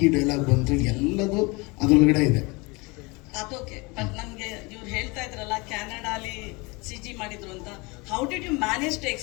ಈ ಡೈಲಾಗ್ ಬಂತು, ಎಲ್ಲದು ಅದರೊಳಗಡೆ ಇದೆ. ಅದೋಕೆ. ಬಟ್ ನಮ್ಗೆ ಇವ್ರು ಹೇಳ್ತಾ ಇದ್ರಲ್ಲ ಕ್ಯಾನಡಾಲಿ CG ಮಾಡಿದ್ರು ಅಂತ. How did you manage to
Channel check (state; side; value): quieter; right; 26.6 dB